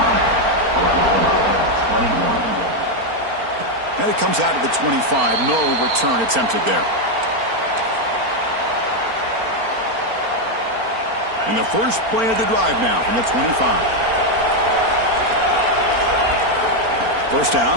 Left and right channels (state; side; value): late; left; 4.4 ms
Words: And it comes out of the 25. No return attempted there. And the first play of the drive now from the 25. First down,